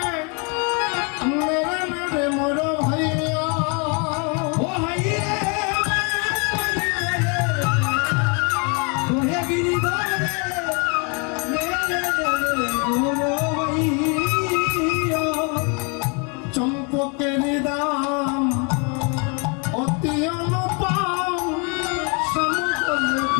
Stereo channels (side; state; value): right; quieter; 34.8 dB